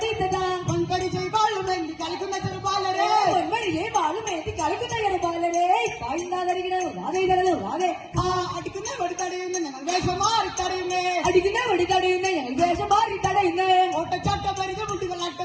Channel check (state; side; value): identical; both; correlation 1.00